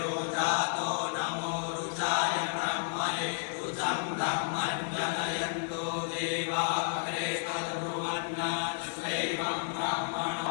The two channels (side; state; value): right; silent; 57 dB below the other